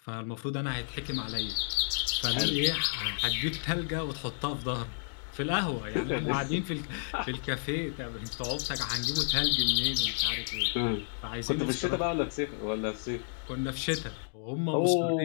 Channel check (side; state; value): right; silent; digital silence